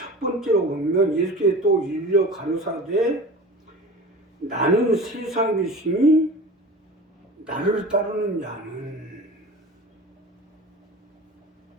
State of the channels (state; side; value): normal; both; correlation 0.36